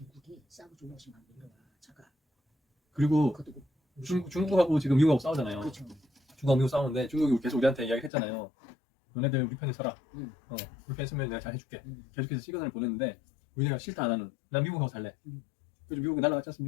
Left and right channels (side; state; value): right; drops out; at 8.1 s